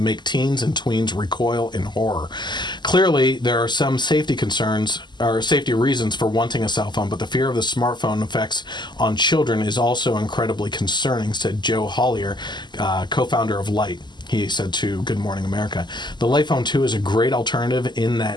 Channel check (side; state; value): right; late; 0.21 ms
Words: teens and tweens recoil in horror. Clearly, there are some safety concerns or safety reasons for wanting a cell phone, but the fear of the smartphone effects on children is also incredibly concerning, said Joe Hollier, co-founder of Light. He said to Good Morning America, the Light Phone 2 is a great alternative in